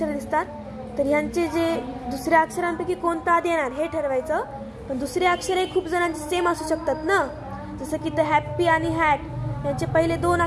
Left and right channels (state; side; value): identical; both; correlation 1.00